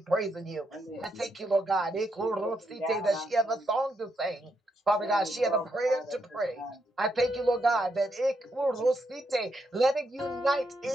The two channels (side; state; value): both; normal; correlation 0.80